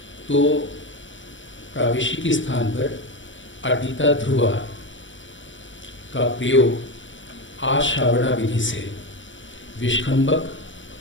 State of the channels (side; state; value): right; late; 0.55 ms